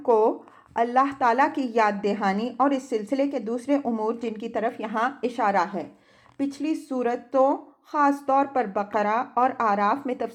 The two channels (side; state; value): both; identical; correlation 1.00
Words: کو اللہ تعالیٰ کی یاد دہانی اور اس سلسلے کے دوسرے امور جن کی طرف یہاں اشارہ ہے، پچھلی صورتوں خاص طور پر بقرہ اور اعراف میں